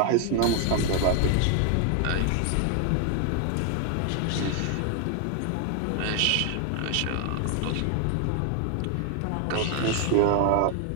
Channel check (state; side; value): different; both; correlation 0.00